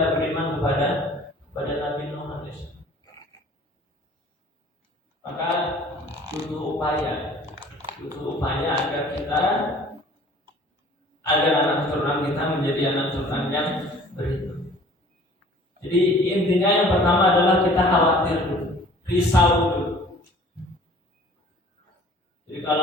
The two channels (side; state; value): both; normal; correlation 0.50